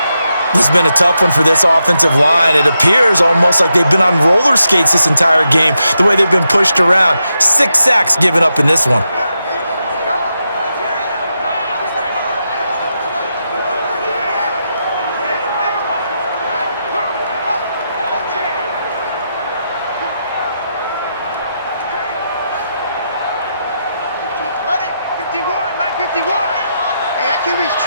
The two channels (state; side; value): inverted; both; correlation -0.85